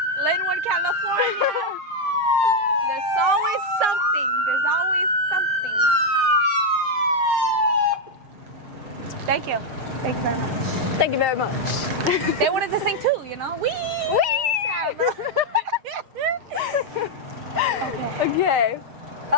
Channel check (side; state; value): left; late; 6.5 ms